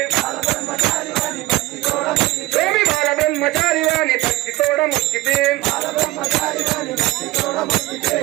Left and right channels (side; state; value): left; quieter; 19.2 dB